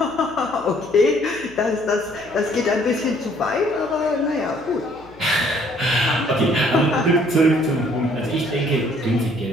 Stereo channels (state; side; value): noise; left; hum, 24 dB below the sound